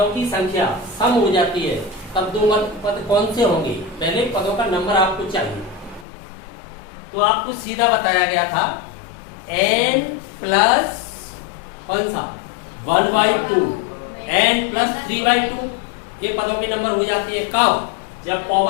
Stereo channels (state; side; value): drops out; right; at 6.1 s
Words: की संख्या सम हो जाती है तब 2 मध्य पद कौन से होंगे? पहले पदों का नंबर आपको चाहिए, तो आपको सीधा बताया गया था n प्लस कौन सा 1/2 n प्लस 3/2, ये पदों के नंबर हो जाती है कब? जब